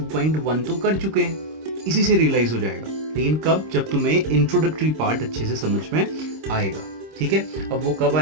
तो कर चुके हैं. इसी से realize हो जाएगा. लेकिन कब? जब तुम्हें introductory part अच्छे से समझ में आएगा. ठीक है, अब वो कब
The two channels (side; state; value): left; late; 26 ms